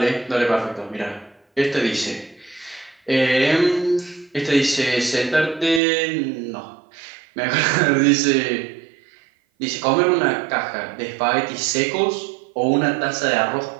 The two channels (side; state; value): left; drops out; at 5.8 s